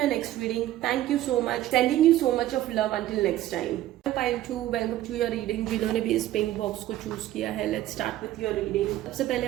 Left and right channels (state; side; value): quieter; left; 14.0 dB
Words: next reading. Thank you so much, sending you so much of love until next time. Pile 2, welcome to your reading। जिन्होंने भी इस pink box को choose किया है, let's start with your reading। सबसे पहले